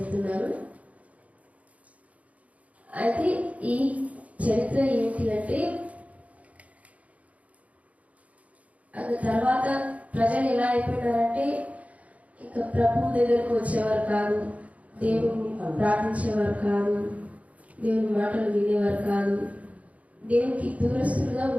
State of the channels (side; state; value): left; late; 0.068 ms